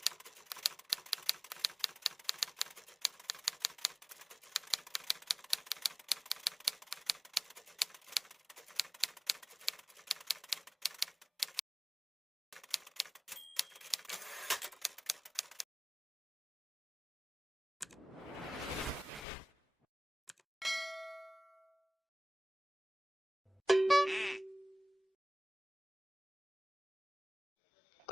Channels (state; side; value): normal; both; correlation 0.96